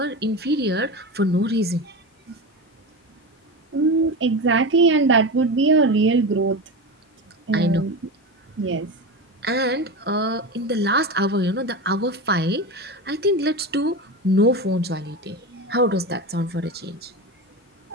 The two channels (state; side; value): normal; both; correlation 0.22